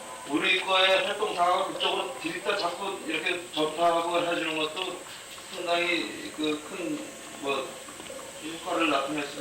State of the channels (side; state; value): both; identical; correlation 1.00